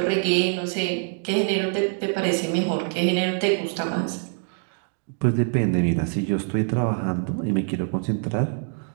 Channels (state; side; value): silent; left; 55 dB below the other